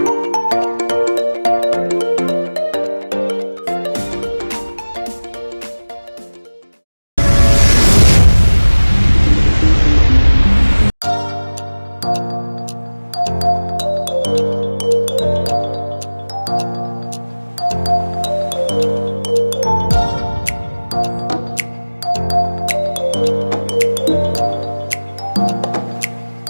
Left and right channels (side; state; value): both; inverted; correlation -1.00